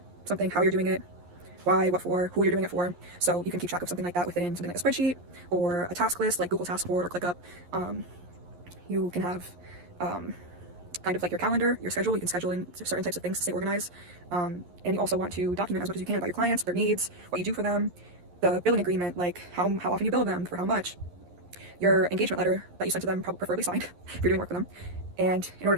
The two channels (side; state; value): left; late; 11 ms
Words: something, how you're doing it, why, what for, who you're doing it for. So you can keep track of something like that within something like a spreadsheet or a task list like Google Task Board or ClickUp. You can have kind of like your calendar, your schedule. You can schedule in certain types of things to stay organized. And you also want to document as much as you can about your clients, their needs, what you do for them, the billing agreement, like how often you bill them, for how much, your engagement letter that you sent to them, preferably signed if you're doing work for them. And in order